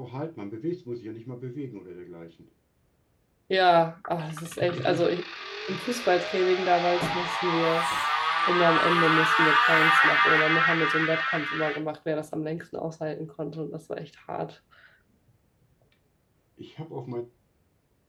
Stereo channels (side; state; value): both; identical; correlation 1.00